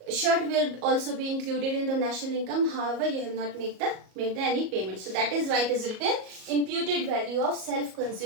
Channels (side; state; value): left; late; 37 ms